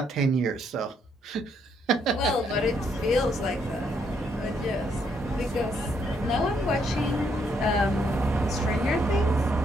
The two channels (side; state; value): both; normal; correlation 0.73